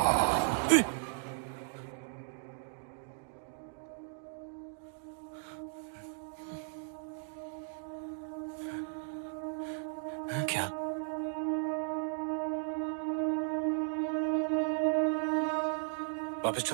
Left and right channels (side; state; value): left; silent; digital silence